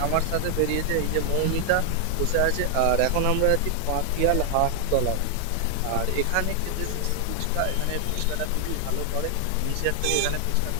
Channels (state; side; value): different; both; correlation 0.00